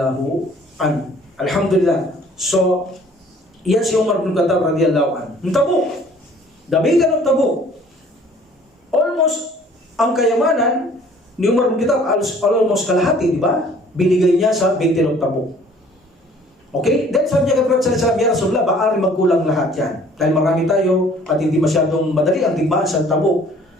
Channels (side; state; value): both; normal; correlation 0.54